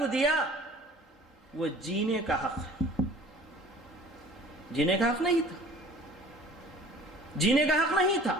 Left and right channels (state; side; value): normal; both; correlation 0.48